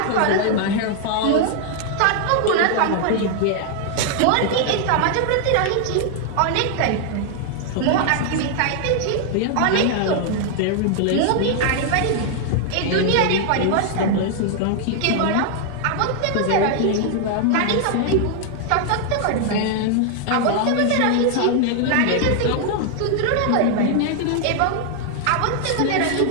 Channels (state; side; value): different; both; correlation 0.00